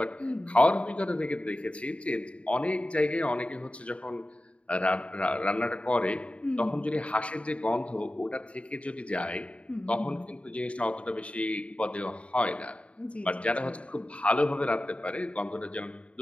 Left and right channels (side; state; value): right; late; 0.062 ms